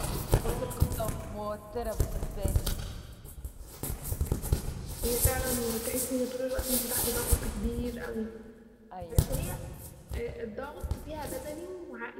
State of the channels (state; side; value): identical; both; correlation 1.00